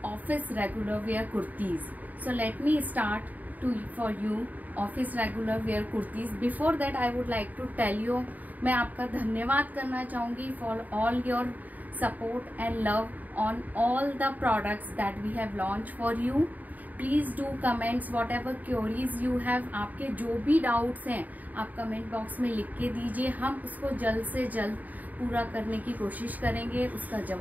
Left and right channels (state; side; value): late; left; 0.079 ms